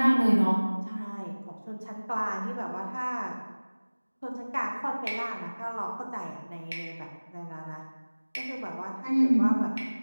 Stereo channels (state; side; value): inverted; both; correlation -1.00